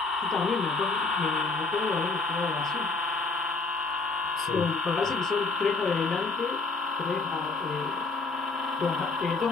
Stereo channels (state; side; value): quieter; right; 3.8 dB